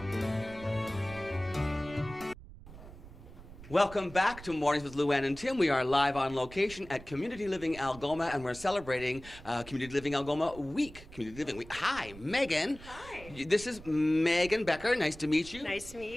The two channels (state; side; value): noise; right; rumble, 17 dB below the sound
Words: Welcome back to Mornings with Luann and Tim. We are live on location at Community Living Algoma, and we're celebrating Community Living Algoma Week. Community Living Week. Hi, Megan. Hi. This is Megan Becker. Nice to meet you. Nice to meet